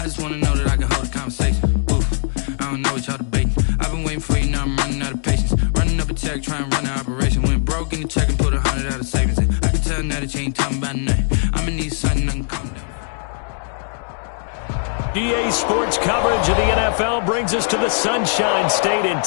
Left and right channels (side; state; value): right; silent; digital silence